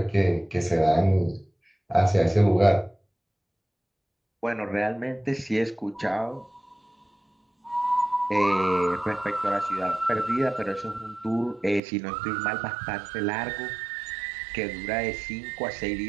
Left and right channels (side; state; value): left; drops out; at 11.8 s